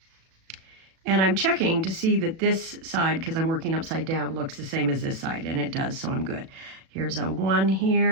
And I'm checking to see that this side, because I'm working upside down, looks the same as this side, and it does, so I'm good. Here's a 1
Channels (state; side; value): late; left; 37 ms